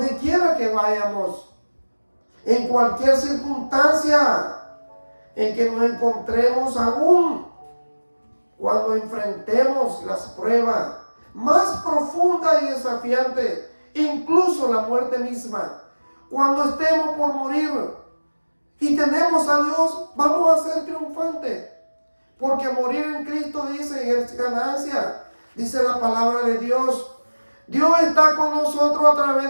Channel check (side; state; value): both; inverted; correlation -1.00